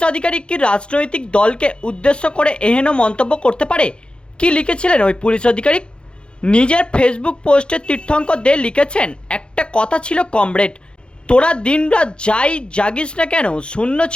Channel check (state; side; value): late; right; 0.055 ms